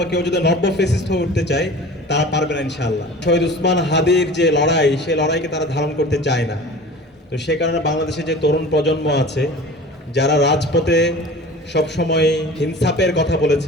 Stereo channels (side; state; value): both; normal; correlation 0.40